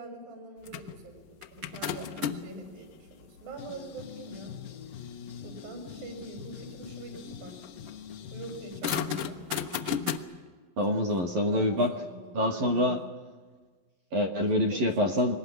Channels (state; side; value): late; left; 11 ms